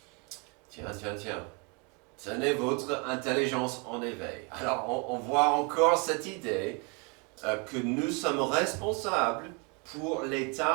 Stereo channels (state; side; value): quieter; left; 32.7 dB